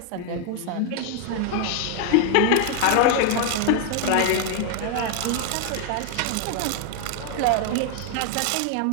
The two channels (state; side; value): different; both; correlation 0.00